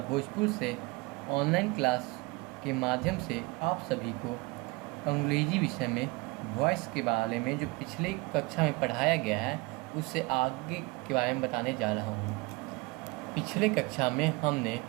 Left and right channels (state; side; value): quieter; left; 25.3 dB